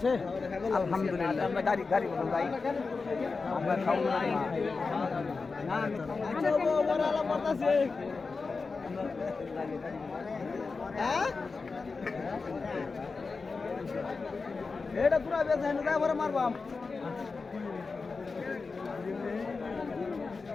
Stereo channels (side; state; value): right; quieter; 4.3 dB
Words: আলহামদুলিল্লাহ। আমরা গাড়ি গাড়ি বলুন ভাই আমরা খাও না না আচ্ছা ও বড় আলা পড়তাছে হ্যাঁ এটা পুরা বেচা না যাই বড় মারবাম